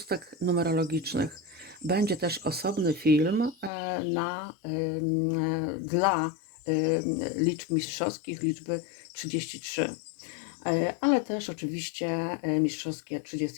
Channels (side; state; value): right; drops out; at 3.7 s